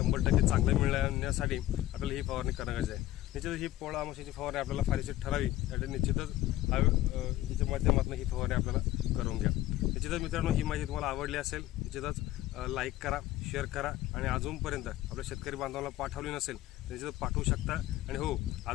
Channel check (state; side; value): quieter; right; 14.9 dB